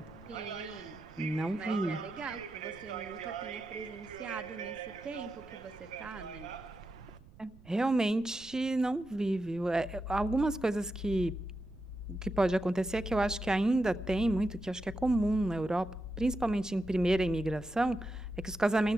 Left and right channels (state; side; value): noise; right; rumble, 22 dB below the sound